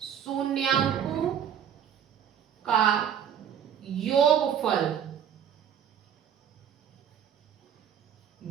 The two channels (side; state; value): left; quieter; 8.8 dB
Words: शून्यांकों का योगफल